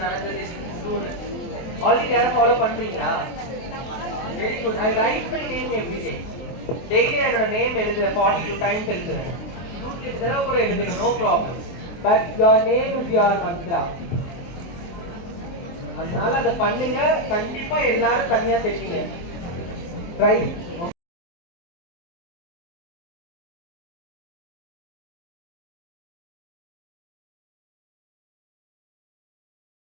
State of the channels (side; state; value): right; late; 23 ms